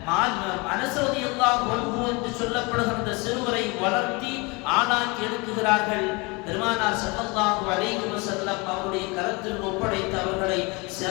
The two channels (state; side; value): quieter; right; 27.4 dB